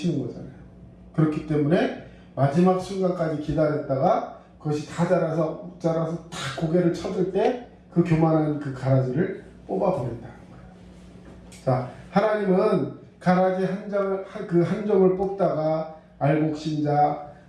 거잖아요. 그렇기 때문에 마지막 순간까지 기다렸다가 그것이 다 자라서 탁 고개를 쳐들 때 그 교만한 그 가라지를 뽑아버린다는 거예요. 자, 하나님은 가라지 한 점을 뽑다가 알곡신자,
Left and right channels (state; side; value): identical; both; correlation 1.00